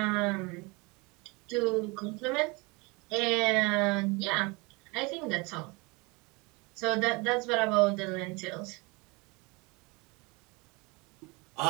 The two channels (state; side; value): quieter; left; 27.3 dB